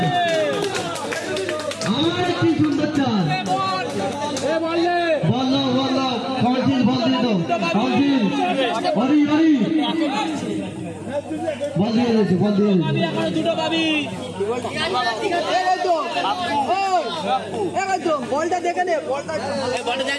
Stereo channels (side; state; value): both; identical; correlation 1.00